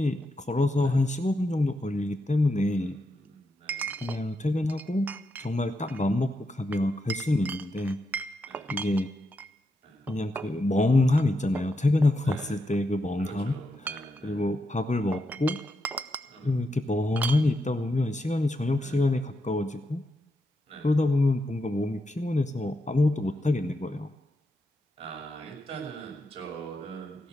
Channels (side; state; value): both; normal; correlation 0.84